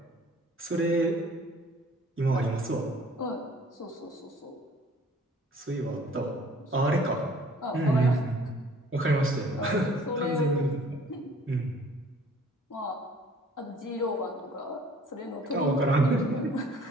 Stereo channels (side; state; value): both; normal; correlation 0.54